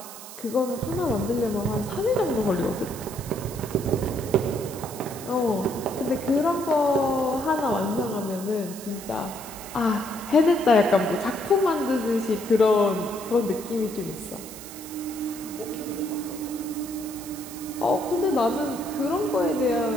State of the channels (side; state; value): right; noise; hiss, 14 dB below the sound